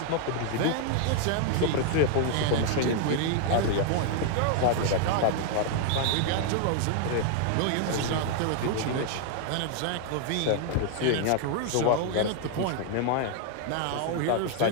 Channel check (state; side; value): different; both; correlation 0.00